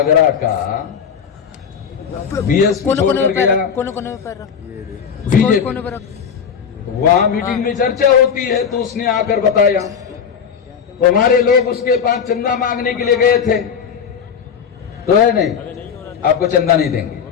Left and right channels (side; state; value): right; quieter; 7.1 dB